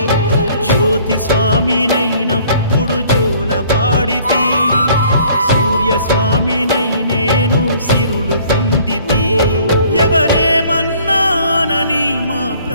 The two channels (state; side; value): inverted; both; correlation -0.56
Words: జ్యోతి స్వామినైనప్పుడు జోల పాడితి సూర్య స్వామినై నేను సిరులు పొందితి ఎవరేమన్నానని మా